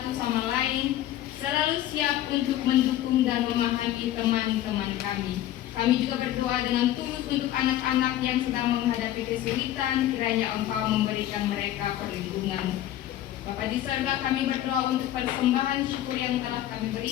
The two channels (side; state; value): right; quieter; 13.1 dB